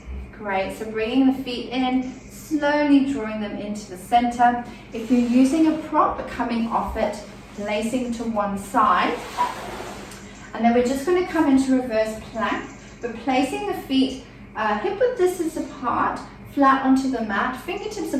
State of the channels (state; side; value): identical; both; correlation 1.00